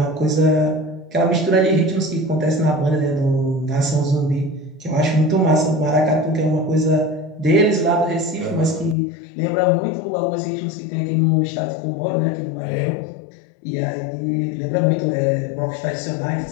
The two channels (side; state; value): right; drops out; at 9.0 s